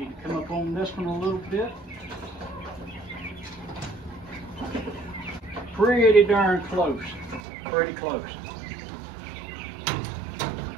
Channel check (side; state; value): left; drops out; at 7.4 s